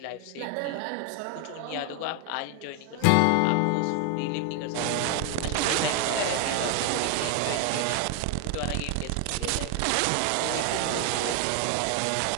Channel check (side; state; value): both; different; correlation 0.01